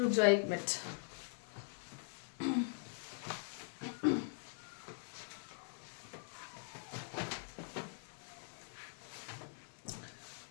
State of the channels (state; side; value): silent; right; digital silence